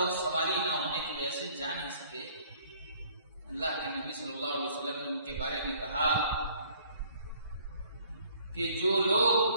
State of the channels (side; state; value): both; inverted; correlation -0.58